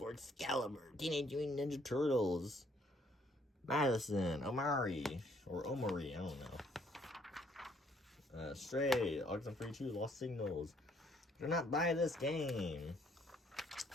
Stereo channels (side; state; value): both; normal; correlation 0.66